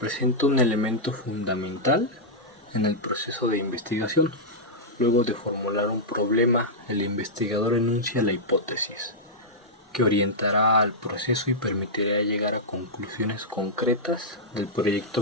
un elemento fundamental en el proceso de investigación. Luego de formular un problema, el investigador enuncia la hipótesis, que orientará al proceso y permitirá llegar a conclusiones concretas del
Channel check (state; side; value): normal; both; correlation -0.09